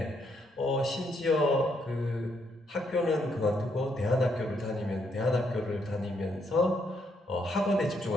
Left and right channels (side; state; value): both; normal; correlation 0.75